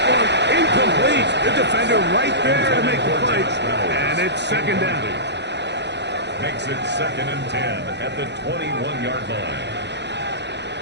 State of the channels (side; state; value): left; late; 0.50 ms